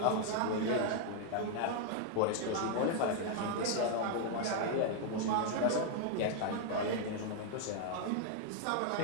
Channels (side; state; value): both; different; correlation 0.00